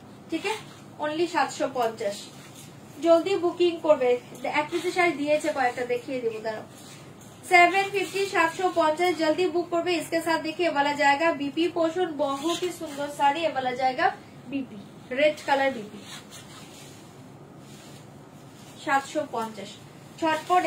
ঠিক আছে, অনলি 750 জলদি বুকিং করবে। এক পিসের শাড়ি দিয়েছে কয়েকটা, দেখিয়ে দেবো দাঁড়াও। 750 750 जल्दी बुक करबे। इसके साथ देखिए वाला जाएगा बीपी पोर्शन, बहुत ही सुंदर साड़ी, ये वाला जाएगा बीपी रेड कलर बीपी 750। झटपट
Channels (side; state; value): both; identical; correlation 1.00